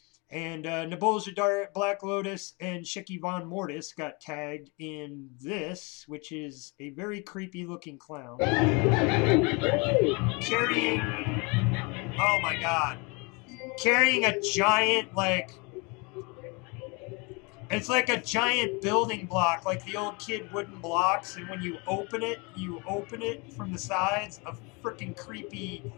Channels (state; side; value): quieter; right; 29.7 dB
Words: And Nebulja Black Lotus and Shiki Von Mortis got tagged in this, which is a very creepy looking clown carrying, oh my god, carrying a giant, like, it's like a giant building block, like the old kid wooden blocks, and when you open it from the sides, a freaking creepy